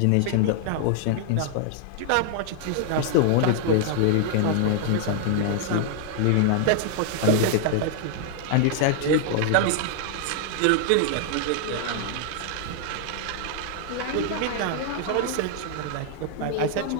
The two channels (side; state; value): both; different; correlation -0.01